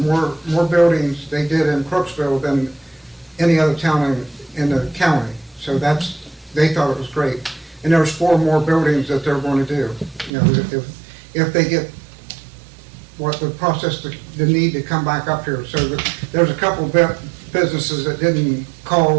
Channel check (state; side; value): drops out; left; at 10.3 s